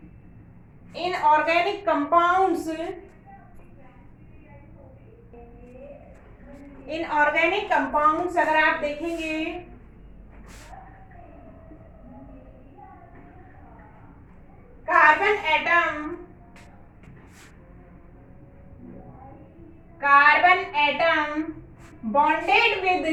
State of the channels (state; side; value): identical; both; correlation 1.00